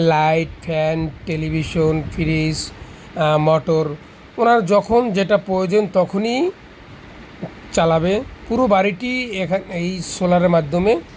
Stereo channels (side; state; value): both; identical; correlation 1.00